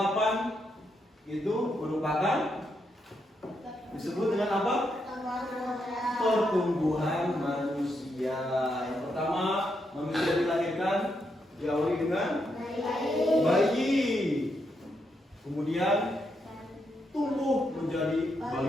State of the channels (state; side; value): normal; both; correlation 0.80